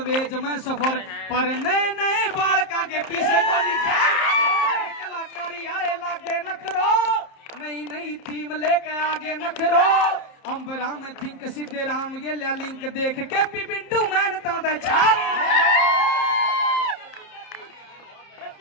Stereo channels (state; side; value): late; right; 30 ms